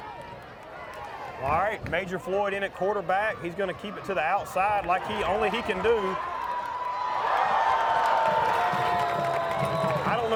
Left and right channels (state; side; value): identical; both; correlation 1.00